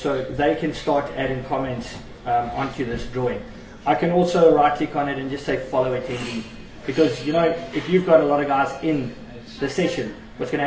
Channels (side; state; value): both; identical; correlation 1.00